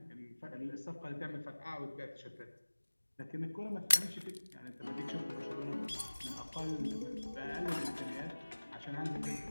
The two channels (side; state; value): both; inverted; correlation -1.00